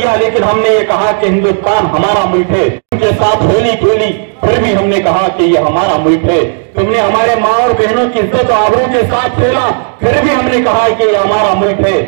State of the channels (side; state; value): left; silent; digital silence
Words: लेकिन हमने ये कहा कि हिंदुस्तान हमारा मुल्क है। उनके साथ होली खेली, फिर भी हमने कहा कि ये हमारा मुल्क है। तुमने हमारे माँ और बहनों की इज्जत और आबरू के साथ खेला, फिर भी हमने कहा कि ये हमारा मुल्क है।